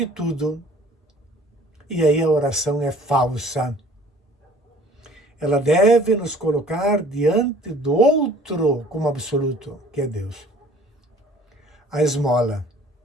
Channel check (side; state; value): both; normal; correlation 0.52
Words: tudo. E aí a oração é falsa. Ela deve nos colocar diante do outro como absoluto, que é Deus. A esmola